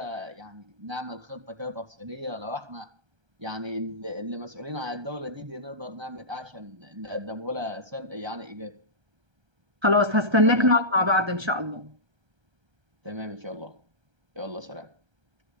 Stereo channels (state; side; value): late; left; 1.3 ms